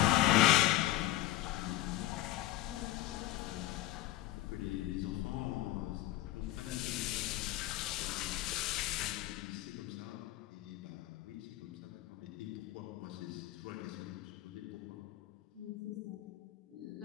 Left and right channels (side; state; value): right; quieter; 15.7 dB